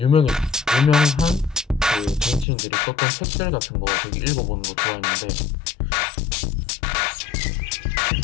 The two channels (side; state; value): right; drops out; at 2.5 s